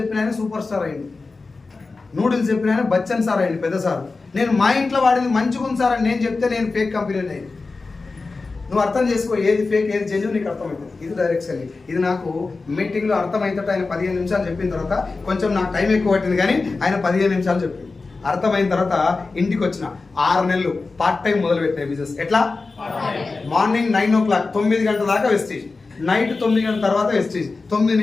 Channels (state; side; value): quieter; right; 3.9 dB